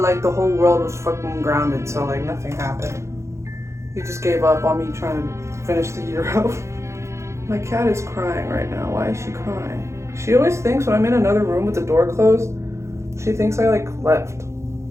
the whole world was fucking grounded, so like nothing happened. He just gave up on me trying to finish the year out. My cat is crying right now. Why is she crying? She always thinks when I'm in another room with the door closed, she thinks I like left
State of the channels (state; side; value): late; left; 0.14 ms